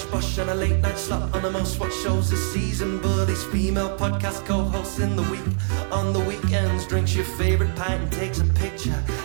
bush, and a late night slot on the most watched shows this season. But he's female podcast co-hosts in the week. On the weekends, drinks your favorite pint and takes a picture.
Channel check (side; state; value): left; silent; 59 dB below the other